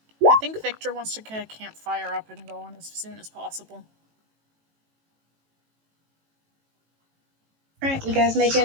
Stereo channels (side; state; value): left; late; 18 ms